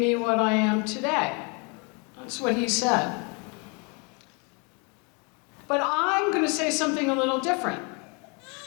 what I am today. That's what he said. But I'm going to say something a little different,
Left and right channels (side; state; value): right; quieter; 32.8 dB